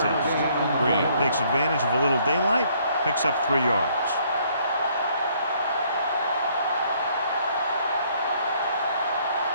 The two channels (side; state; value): both; inverted; correlation -0.65